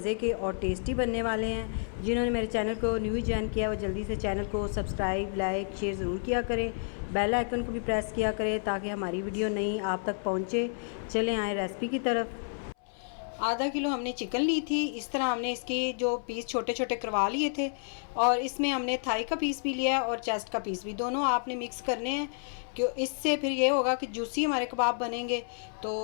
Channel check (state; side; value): silent; right; 58 dB below the other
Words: के और टेस्टी बनने वाले हैं। जिन्होंने मेरे चैनल को न्यू ज्वाइन किया वो जल्दी से चैनल को सब्सक्राइब लाइक शेयर ज़रूर किया करें। बेल आइकन को भी प्रेस किया करें ताकि हमारी वीडियो नई आप तक पहुँचे। चलें आए रेसिपी की तरफ। आधा किलो हमने चिकन ली थी। इस तरह हमने इसके जो पीस छोटे छोटे करवा लिए थे और इसमें हमने थाई का पीस भी लिया है और चेस्ट का पीस भी, दोनों आपने मिक्स करने हैं क्यों इससे फिर ये होगा कि जूसी हमारे कबाब बनेंगे। तो